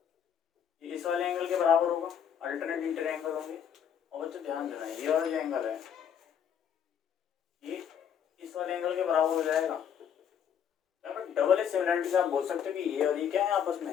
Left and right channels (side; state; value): right; quieter; 8.5 dB